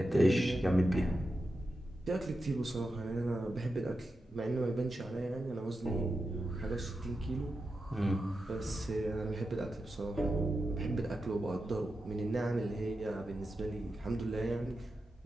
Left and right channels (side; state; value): both; normal; correlation 0.89